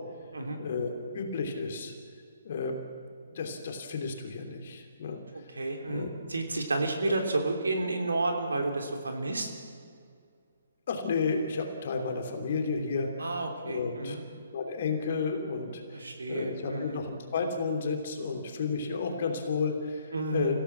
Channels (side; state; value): both; inverted; correlation -0.69